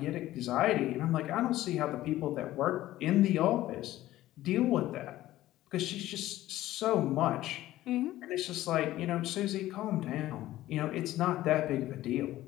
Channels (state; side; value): quieter; right; 15.1 dB